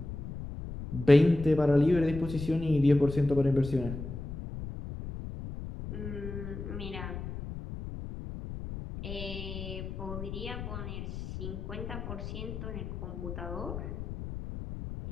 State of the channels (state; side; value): noise; left; rumble, 8 dB below the sound